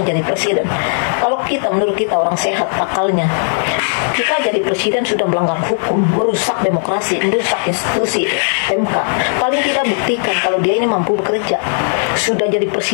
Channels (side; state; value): right; silent; digital silence